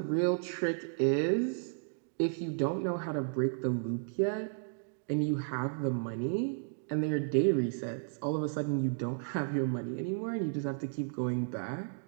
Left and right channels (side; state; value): left; silent; digital silence